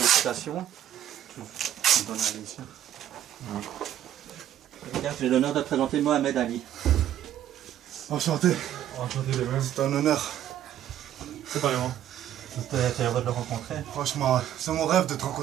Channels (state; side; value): quieter; left; 11.4 dB